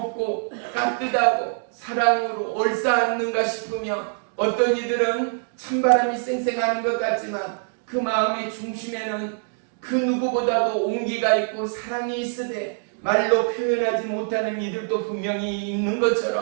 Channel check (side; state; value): left; silent; 62 dB below the other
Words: 따뜻하고 사랑으로 얼싸안는가 싶으며 어떤 이들은 찬바람이 쌩쌩하는 것 같지만 그 마음의 중심에는 그 누구보다도 온기가 있고 사랑이 있으되 말로 표현하지 못하는 이들도 분명히 있는